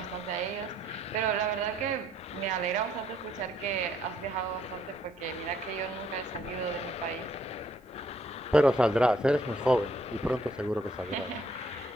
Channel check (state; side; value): normal; both; correlation 0.67